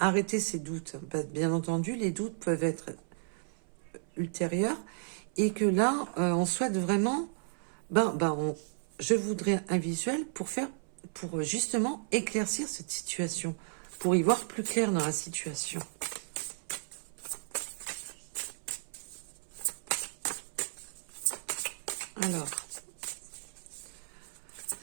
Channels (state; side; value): silent; left; 55 dB below the other